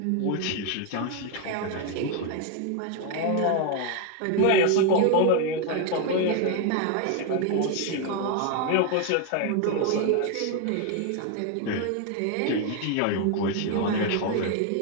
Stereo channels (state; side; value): different; both; correlation 0.01